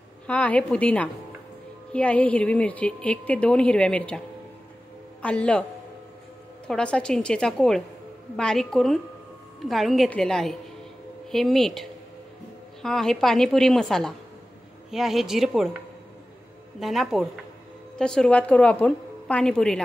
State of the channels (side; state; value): both; normal; correlation 0.95